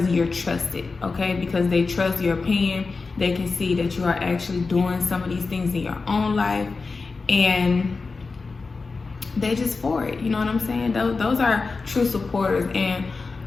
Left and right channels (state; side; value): quieter; right; 4.2 dB